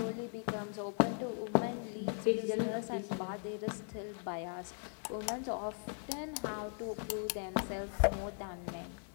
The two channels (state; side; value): silent; right; 52 dB below the other